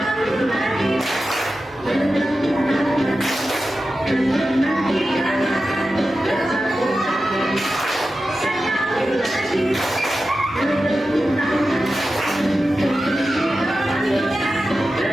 lagi bertepuk tangan, menantikan bertepuk tangan, sekali lagi bertepuk tangan.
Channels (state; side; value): normal; both; correlation 0.92